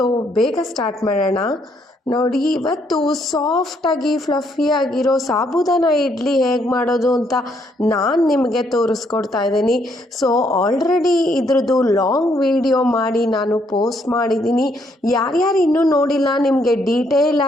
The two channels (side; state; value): both; normal; correlation 0.71